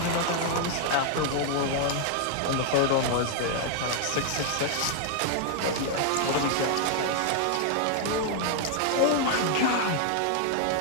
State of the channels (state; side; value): different; both; correlation 0.00